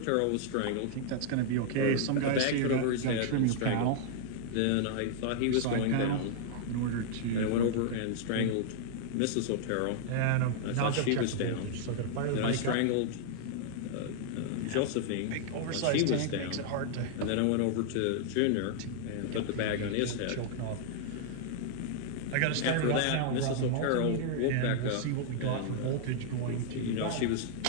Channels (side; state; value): both; different; correlation -0.01